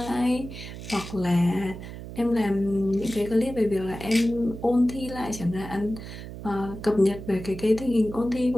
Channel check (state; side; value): noise; right; hum, 11 dB below the sound